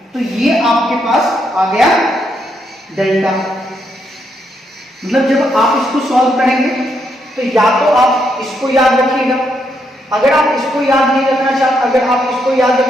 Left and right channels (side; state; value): both; normal; correlation 0.77